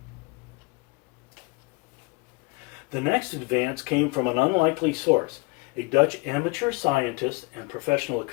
The next advance came from an unlikely source, a Dutch amateur scientist and professional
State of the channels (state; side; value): quieter; right; 27.1 dB